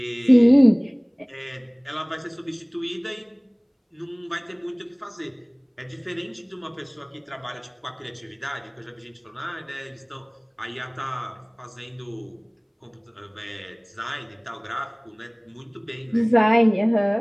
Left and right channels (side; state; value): both; identical; correlation 1.00